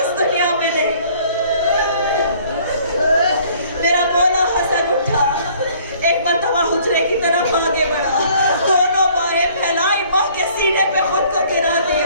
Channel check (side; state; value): both; inverted; correlation -0.57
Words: دنیا میں نہیں۔ میرا مولا حسن اٹھا، ایک مرتبہ حجرے کی طرف آگے بڑھا، دونوں بائیں پھیلائی، ماں کے سینے پہ خود کو گرا